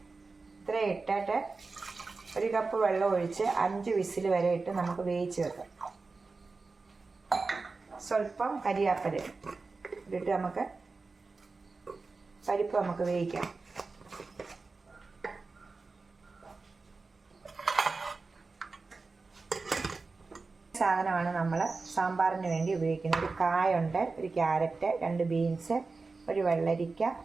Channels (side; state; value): left; quieter; 4.0 dB